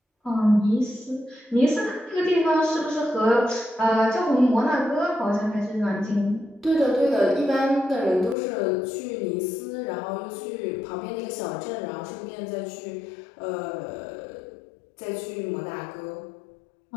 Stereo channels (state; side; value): drops out; right; at 8.3 s